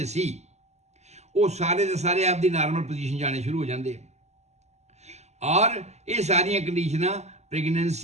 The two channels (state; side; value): late; left; 0.33 ms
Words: ਸੀ, ਉਹ ਸਾਰੇ ਦੇ ਸਾਰੇ ਆਪਦੀ ਨਾਰਮਲ ਪੋਜੀਸ਼ਨ ਜਾਣੇ ਸ਼ੁਰੂ ਹੋ ਜਾਂਦੇ। ਔਰ ਇਹ ਸਾਰੀਆਂ ਕੰਡੀਸ਼ਨਾਂ